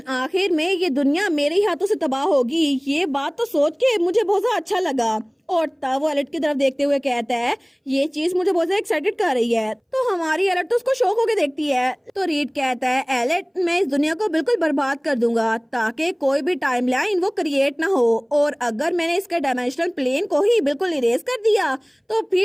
आखिर में ये दुनिया मेरे ही हाथों से तबाह होगी। ये बात तो सोच के मुझे बहुत ज्यादा अच्छा लगा। और तब वो एलिट की तरफ देखते हुए कहता है ये चीज मुझे बहुत ज्यादा एक्साइटेड कर रही है। तो हमारी एलिट तो उसको शौक होके देखती है। तो रीड कहता है एलिट, मैं इस दुनिया को बिल्कुल बर्बाद कर दूंगा ताकि कोई भी टाइमलाइन वो क्रिएट ना हो, और अगर मैंने इसके डायमेंशनल प्लेन को ही बिल्कुल इरेज कर दिया तो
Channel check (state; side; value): identical; both; correlation 1.00